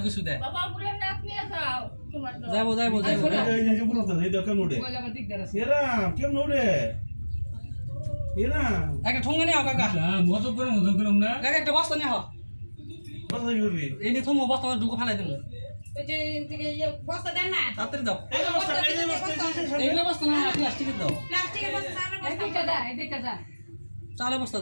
কিছু দে যাবো যাবো যাবো এই যে বলতো এই দেখেন ওড়ে এরা কেমন ওড়ে এরা একটা ঠোঙ্গা নিয়ে কাকা মজা করে না কাকা একটা বস্তা নিয়ে হও কথা করবি এই নিয়ে থমো বস্তা ঢুকে ফেলাই দেবো ওই যে বস্তা দেন না তাড়াতাড়ি দাও এই যে বস্তা এই যে বস্তা এইগুলো বস্তা না প্লাস্টিকের দাও প্লাস্টিকের বস্তা চালের বস্তা চালের বস্তা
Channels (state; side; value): inverted; both; correlation -1.00